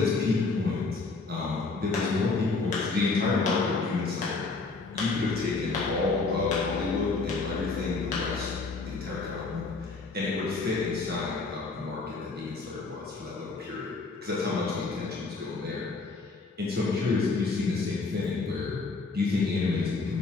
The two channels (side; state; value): right; quieter; 3.9 dB